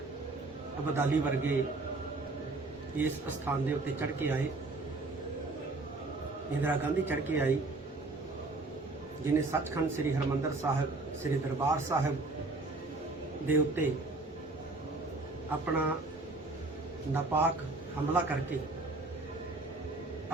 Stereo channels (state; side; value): quieter; left; 3.2 dB